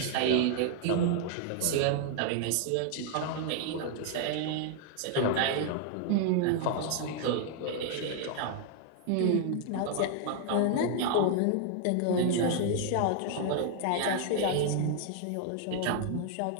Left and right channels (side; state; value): both; different; correlation 0.00